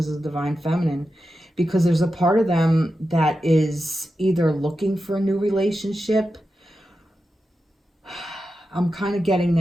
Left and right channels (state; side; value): normal; both; correlation 0.90